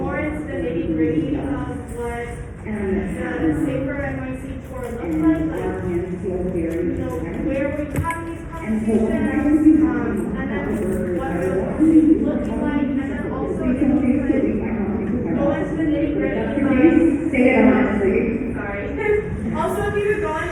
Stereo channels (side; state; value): both; identical; correlation 1.00